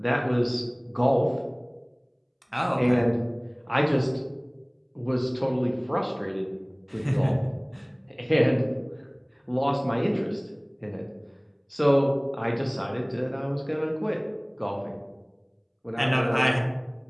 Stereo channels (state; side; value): identical; both; correlation 1.00